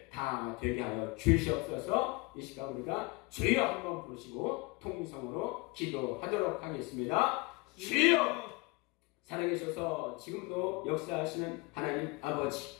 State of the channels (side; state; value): right; quieter; 25.8 dB